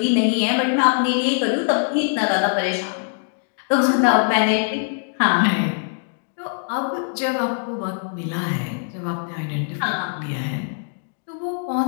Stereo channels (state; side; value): silent; right; digital silence